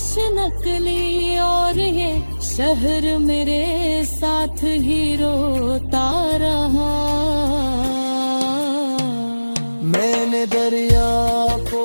नकली, और ये शहर मेरे साथ ही रोता रहा। मैंने दरिया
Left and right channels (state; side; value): inverted; both; correlation -1.00